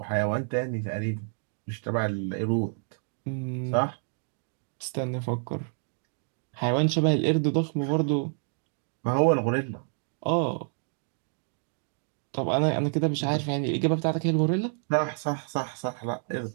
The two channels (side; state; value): left; silent; 59 dB below the other